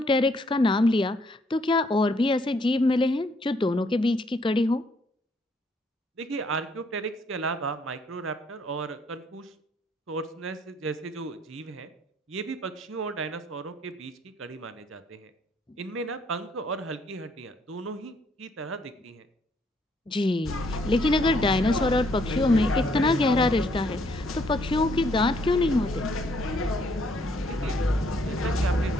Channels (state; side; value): normal; both; correlation 0.68